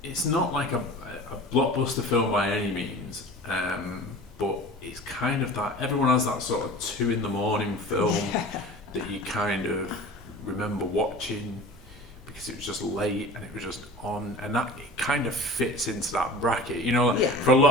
it's not like a blockbuster film by any means, but it's kind of that, everyone has that sort of 2 a.m. film that you kind of remember watching because it was just late and it was just on, and that it kind of fits into that bracket. For a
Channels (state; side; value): normal; both; correlation 0.39